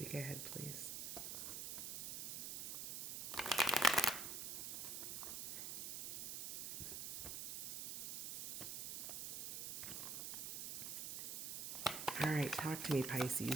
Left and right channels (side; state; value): right; noise; hiss, 4 dB below the sound